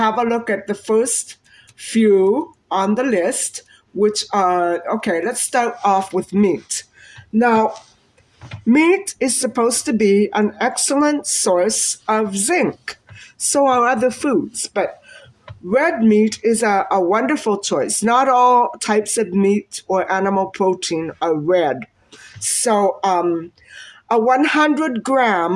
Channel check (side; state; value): both; identical; correlation 1.00